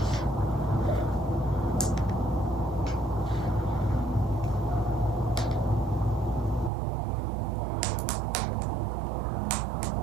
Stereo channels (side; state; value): left; drops out; at 6.7 s